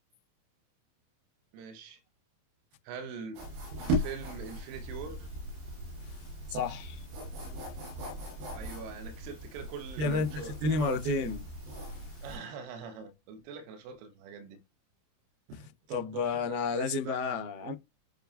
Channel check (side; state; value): left; late; 27 ms